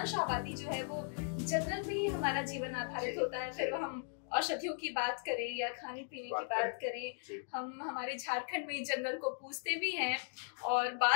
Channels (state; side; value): silent; right; digital silence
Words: आबादी जो है वो जंगल में ही हमारा जीवन आधारित होता है। फिर हम औषधियों की बात करें या खाने पीने की बात करें, हम हमारे झारखंड में जंगल को पूजते भी हैं। और